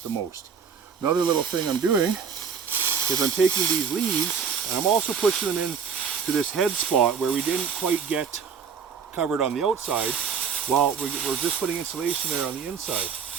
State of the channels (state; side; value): quieter; left; 6.6 dB